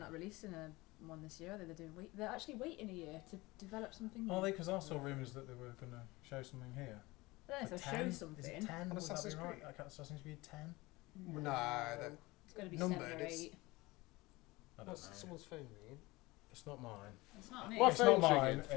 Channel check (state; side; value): quieter; right; 21.6 dB